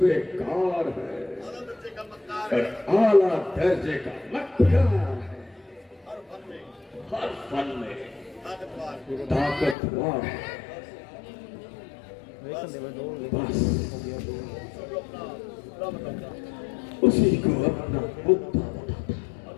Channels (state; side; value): drops out; right; at 9.8 s